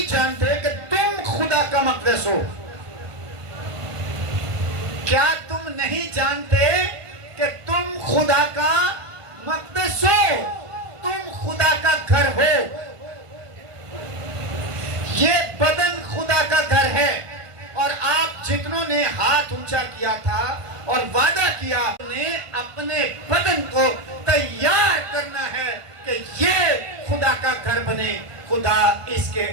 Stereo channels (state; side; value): late; left; 1.5 ms